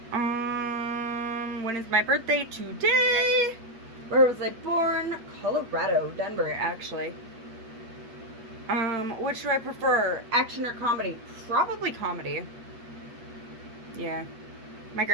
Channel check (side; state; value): left; late; 8.3 ms